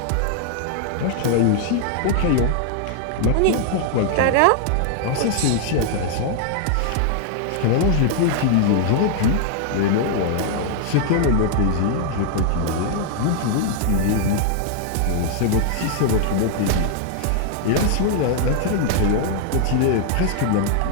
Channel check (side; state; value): both; different; correlation 0.00